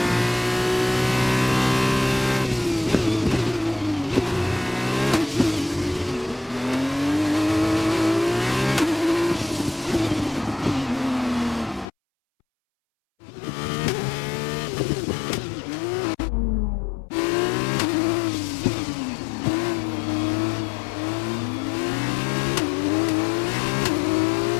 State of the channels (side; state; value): right; drops out; at 11.9 s